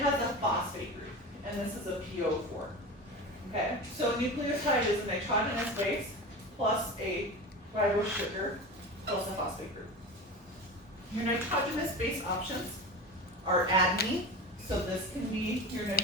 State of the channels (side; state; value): both; normal; correlation 0.29